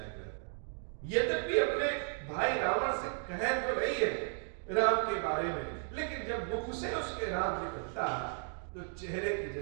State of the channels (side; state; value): left; silent; 55 dB below the other